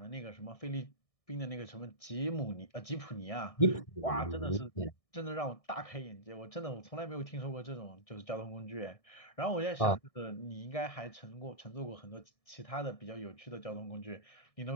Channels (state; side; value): late; right; 1.6 ms